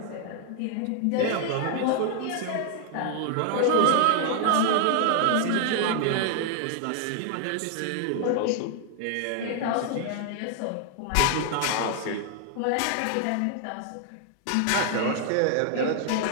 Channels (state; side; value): different; both; correlation 0.00